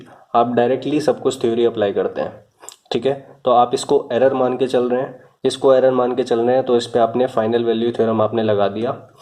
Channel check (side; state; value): both; identical; correlation 1.00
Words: आप डायरेक्टली सब कुछ थ्योरी अप्लाई करते हैं, ठीक है। तो आप इसको एरर मान के चल रहे हैं, इसको एरर मान के चल रहे हैं, तो इस पे आपने फाइनल वैल्यू थ्योरम आपने लगा दिया,